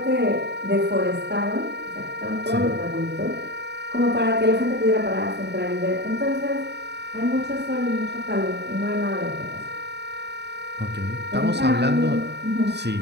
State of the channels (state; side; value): late; left; 0.50 ms